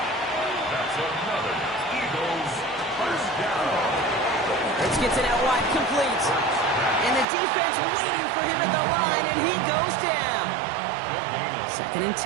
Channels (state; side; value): drops out; left; at 7.2 s